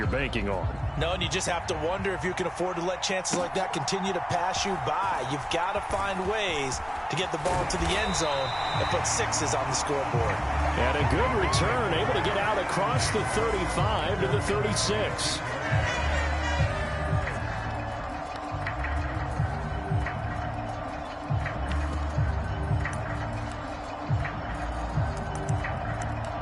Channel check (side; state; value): both; identical; correlation 1.00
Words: banking on. No, and you just have to wonder if you can afford to let chances like that continue to pass you by. You've got to find ways to get the ball to the end zone and put 6s on the scoreboard. And a good return, able to get out across the 35 to the 36.